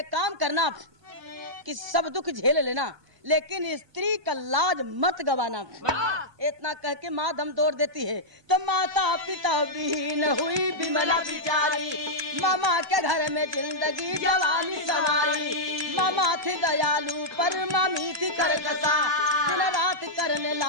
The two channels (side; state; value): left; late; 1.2 ms